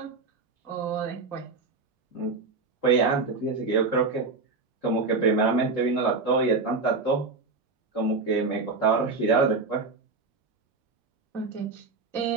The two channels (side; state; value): left; quieter; 4.0 dB